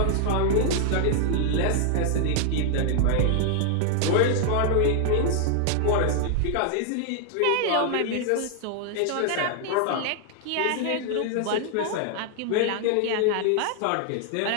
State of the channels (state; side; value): different; both; correlation 0.00